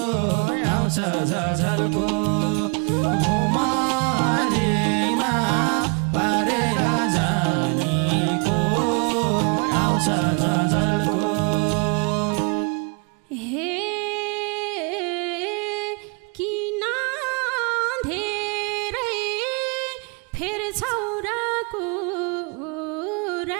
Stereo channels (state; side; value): quieter; left; 32.2 dB